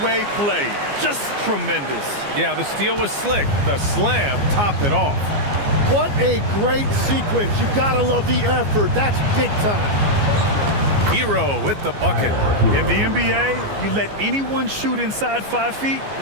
play. Just tremendous. Yeah, the steal was slick. The slam topped it off. What a great sequence. You gotta love the effort. That's big time. Hero with the bucket. In the NBA, you let anyone shoot inside 5 feet,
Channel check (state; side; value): late; left; 14 ms